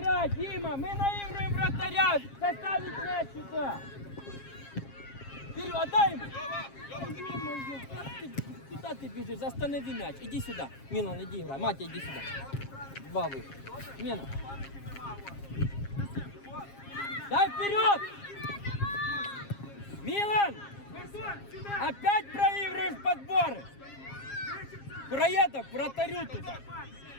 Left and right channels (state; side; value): late; right; 7.4 ms